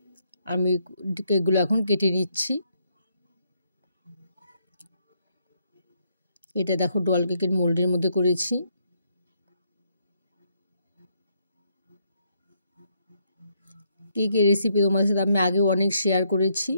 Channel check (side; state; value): both; inverted; correlation -0.74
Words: আমি কেকগুলো এখন কেটে নিচ্ছি। এটা দেখো, ডল কেকের মোল্ডের মধ্যে করেছি। কেকের রেসিপি তোমাদের সাথে আমি আগেও অনেক শেয়ার করেছি,